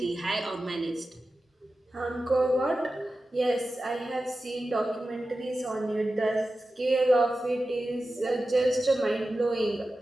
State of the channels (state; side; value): normal; both; correlation 0.93